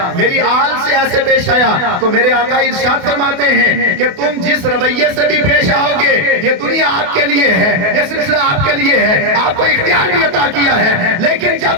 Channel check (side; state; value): left; late; 28 ms